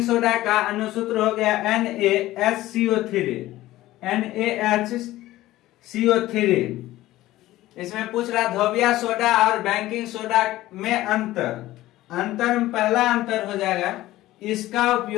soda का अनुसूत्र हो गया NaHCO3। इसमें पूछ रहा धोबिया सोडा और बेकिंग सोडा में अंतर में पहला अंतर हो जाएगा इसका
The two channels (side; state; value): right; quieter; 16.1 dB